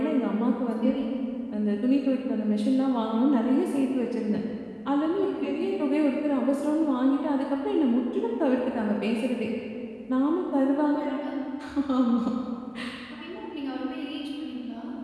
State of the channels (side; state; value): both; identical; correlation 1.00